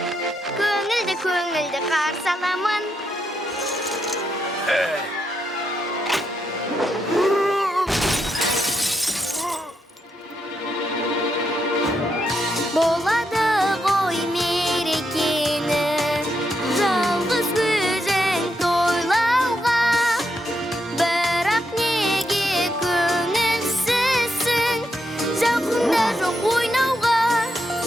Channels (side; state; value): both; normal; correlation 0.82